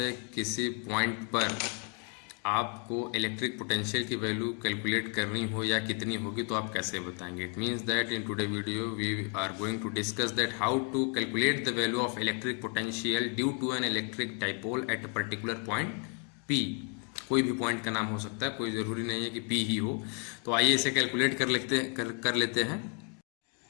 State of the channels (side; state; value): right; quieter; 35.7 dB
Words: किसी पॉइंट पर आपको इलेक्ट्रिक पोटेंशियल की वैल्यू कैलकुलेट करनी हो या कितनी होगी, तो आप कैसे बताएंगे। It means that in today video we are going to discuss that how to calculate the value of electric potential due to an electric dipole at a particular point P. कोई भी पॉइंट का नाम हो सकता है, कोई ज़रूरी नहीं है कि पी ही हो। तो आइए इसे कैलकुलेट कर लेते हैं।